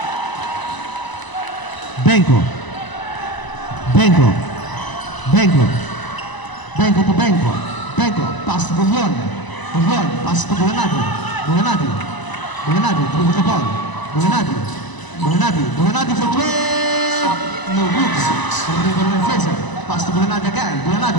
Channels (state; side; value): late; right; 1.0 ms